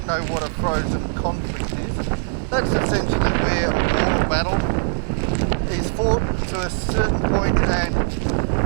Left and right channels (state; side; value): silent; left; digital silence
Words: know what a frozen conflict is, that's essentially where a war or battle is fought to a certain point and